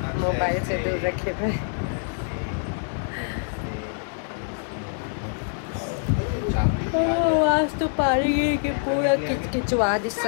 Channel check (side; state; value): right; silent; digital silence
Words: मोबाइल से दूर रखे हुए। आज तो पानी गिर के पूरा किचकिचवा दी